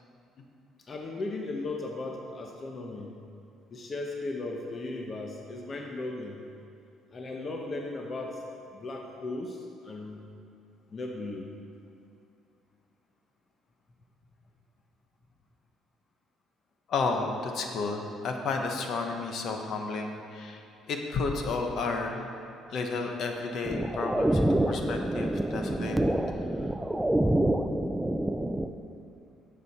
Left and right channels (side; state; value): both; normal; correlation 0.82